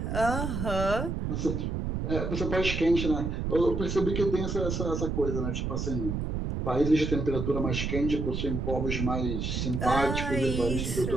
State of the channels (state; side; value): noise; right; rumble, 2 dB below the sound